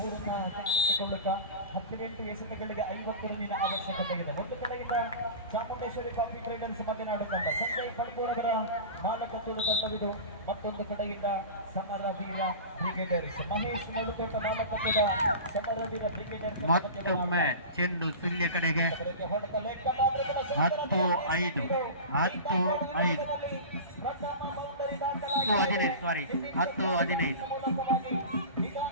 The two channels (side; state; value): both; inverted; correlation -0.32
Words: ಕೈಗೆತ್ತಿಕೊಳ್ಳುತ್ತಾ 18 ಎಸೆತಗಳಿಗೆ 50 ರನ್ನಿನ ಅವಶ್ಯಕತೆ ಇದೆ. ಒಂದು ಕಡೆಯಿಂದ ಚಾಮುಂಡೇಶ್ವರಿ ಕಾಫಿ ಟ್ರೇಡರ್ಸ್ ಮಲೆನಾಡು ತಂಡ ಸಂಜಯ್ ಪಡ್ಕೋರವರ ನಾಲ್ಕತ್ತೂರು ತಂಡವಿದು. ಮತ್ತೊಂದು ಕಡೆಯಿಂದ ಸಮರವೀರ ಬ್ರಿಗೇಡರ್ಸ್ ಮಹೇಶ್ ನಡುಕೋಟ ನಾಲ್ಕತ್ತೂರ ಸಮರವೀರ ಬ್ರಿಗೇಡರ್ಸ್. ಮತ್ತೊಮ್ಮೆ ಚೆಂಡು ಸುಳ್ಯ ಕಡೆಗೆ 10-5